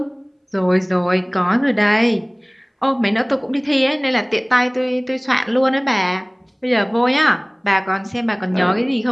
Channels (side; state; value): both; identical; correlation 1.00